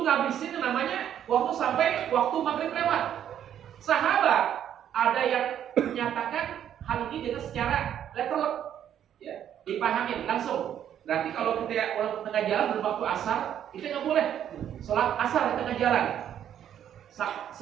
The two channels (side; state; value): left; quieter; 10.0 dB